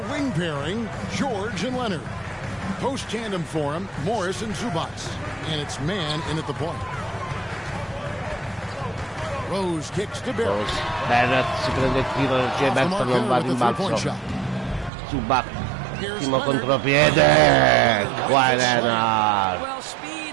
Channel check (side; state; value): left; drops out; at 14.9 s